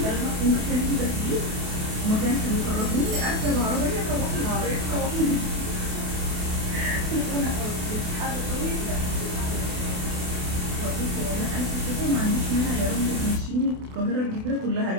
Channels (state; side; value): late; left; 28 ms